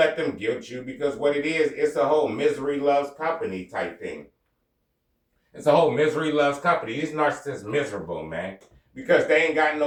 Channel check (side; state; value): both; identical; correlation 1.00